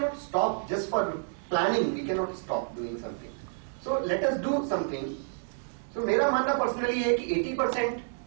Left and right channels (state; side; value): silent; left; 58 dB below the other